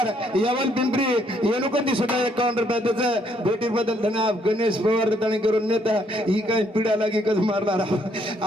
यवल पिंपरी येनुकंदी सुद्धा 51 रुपया त्याचं भेटीर बदल धन्यवाद गणेश पवार त्याने करून नेता ही काय पिढा लागी कस मारणार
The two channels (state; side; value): normal; both; correlation 0.69